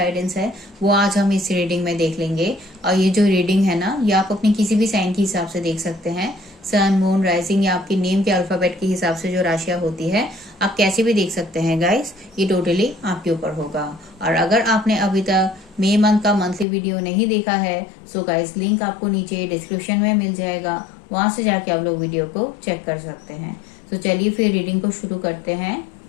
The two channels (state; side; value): drops out; right; at 16.7 s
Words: है, वो आज हम इस रीडिंग में देख लेंगे। और ये जो रीडिंग है ना, ये आप अपनी किसी भी साइन के हिसाब से देख सकते हैं। सन, मून, राइजिंग या आपके नेम के अल्फाबेट के हिसाब से जो राशियां होती है, आप कैसे भी देख सकते हैं गाइस। ये टोटली आपके ऊपर होगा। और अगर आपने अभी तक मई मंथ का मंथली वीडियो नहीं देखा है, सो गाइस लिंक आपको नीचे डिस्क्रिप्शन में मिल जाएगा, वहां से जाके आप लोग वीडियो को चेक कर सकते हैं। तो चलिए फिर रीडिंग को शुरू करते हैं।